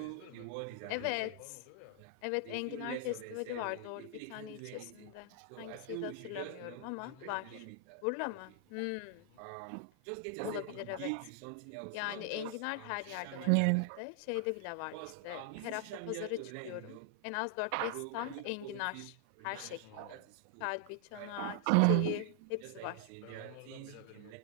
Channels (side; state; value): both; different; correlation 0.00